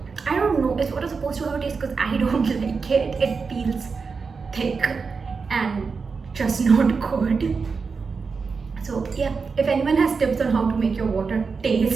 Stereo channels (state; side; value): quieter; left; 5.0 dB